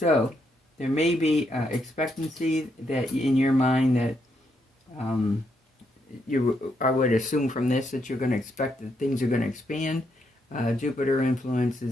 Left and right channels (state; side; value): normal; both; correlation 0.78